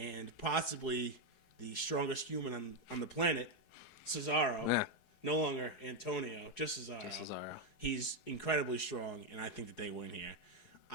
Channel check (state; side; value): late; right; 4.8 ms